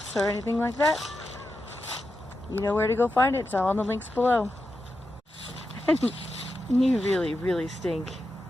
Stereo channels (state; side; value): normal; both; correlation 0.88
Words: or anything like that, you know where to go find it. It's all on the links below. You really, really stink.